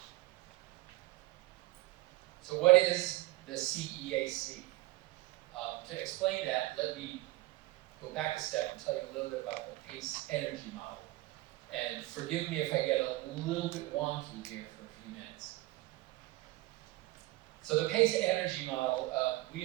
So what is the CEAC? To explain that, let me go back a step and tell you a little bit about the PACE energy model. And forgive me if I get a little bit wonky here for a few minutes. So the PACE energy model, we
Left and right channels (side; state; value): left; quieter; 19.4 dB